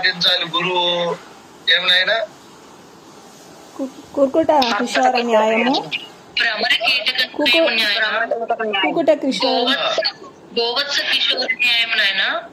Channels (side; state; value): both; identical; correlation 1.00